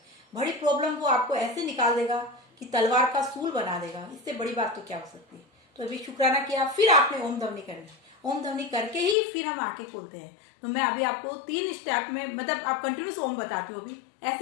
बड़ी प्रॉब्लम वो आपको ऐसे निकाल देगा कि तलवार का सूल बना देगा, इससे बड़ी बात तो क्या हो सकती है। तो अभी शुक्राना किया, फिर आपने ओम ध्वनि करना। ओम ध्वनि करके ही फिर हम आंखें खोलते हैं। तो मैं अभी आपको 3 स्टेप में, मतलब आप कंटिन्यूस ओम बताती हो अभी,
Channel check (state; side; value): drops out; right; at 9.2 s